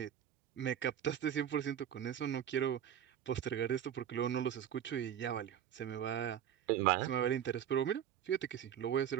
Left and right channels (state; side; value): quieter; left; 9.9 dB